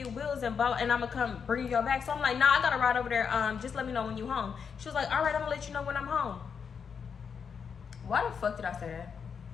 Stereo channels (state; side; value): quieter; right; 6.5 dB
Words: wheels and I'm gonna come bring you your bag. So I'm like, nah, I gotta ride over there. Just let me know when you home. She was like, all right, I'm gonna let you know when I'm home. Why the fuck did I say that?